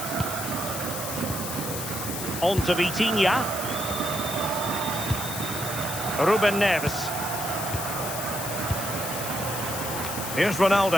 On to Vitinha. Ruben Neves. Here's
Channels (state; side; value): noise; left; hiss, 5 dB below the sound